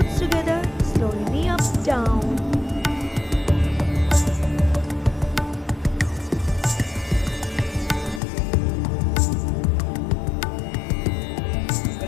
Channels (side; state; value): right; drops out; at 8.2 s